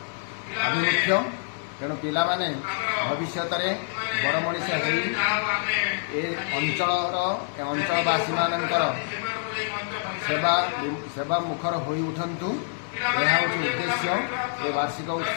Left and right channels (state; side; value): silent; right; 60 dB below the other